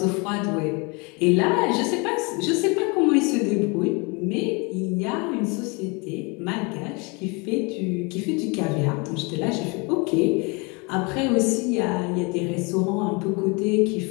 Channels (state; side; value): quieter; right; 29.8 dB